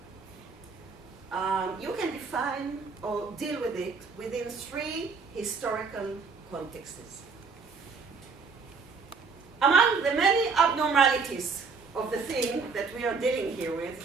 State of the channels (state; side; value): quieter; left; 4.9 dB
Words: you can define or deal with it within three historical contexts. Among the many abnormalities of the thing that we are dealing here